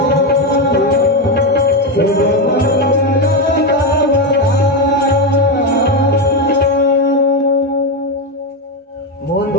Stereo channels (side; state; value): both; normal; correlation 0.09